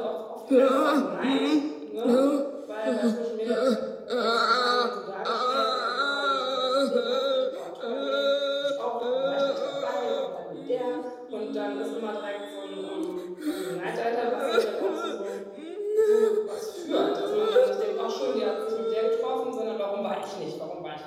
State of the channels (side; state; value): both; identical; correlation 1.00